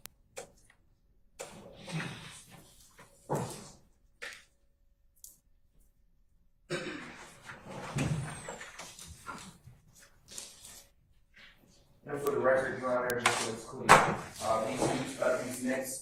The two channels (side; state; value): both; identical; correlation 1.00